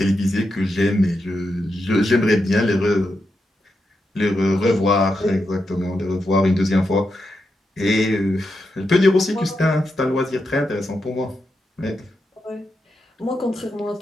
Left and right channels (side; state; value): both; normal; correlation 0.86